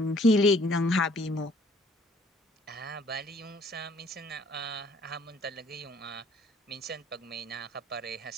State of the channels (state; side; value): normal; both; correlation 0.58